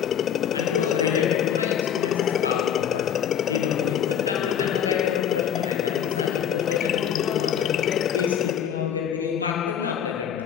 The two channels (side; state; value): right; quieter; 9.0 dB